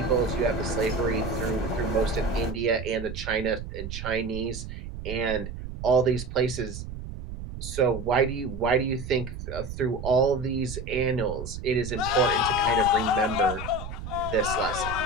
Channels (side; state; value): right; noise; rumble, 9 dB below the sound